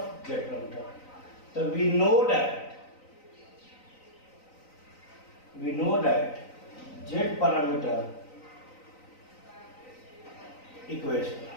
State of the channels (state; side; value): late; right; 3.9 ms